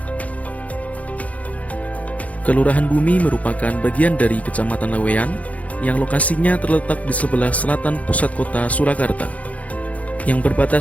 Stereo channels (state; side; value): late; right; 0.069 ms